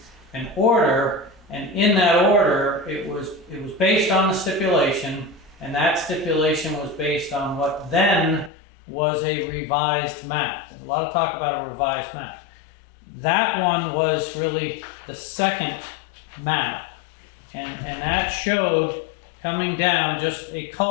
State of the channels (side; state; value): right; drops out; at 8.5 s